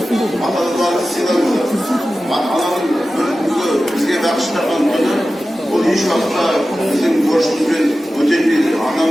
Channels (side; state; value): both; normal; correlation 0.94